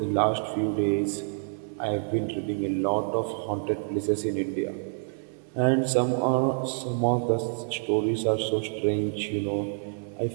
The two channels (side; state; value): left; silent; digital silence